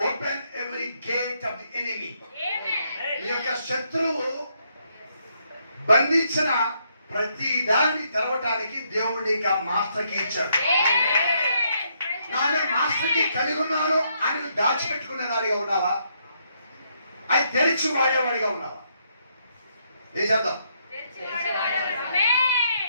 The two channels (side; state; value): both; inverted; correlation -0.75